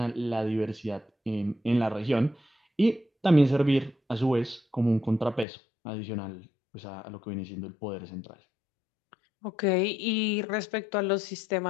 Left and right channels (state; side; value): drops out; right; at 5.5 s